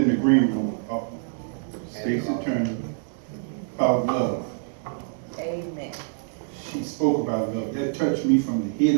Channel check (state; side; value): silent; left; digital silence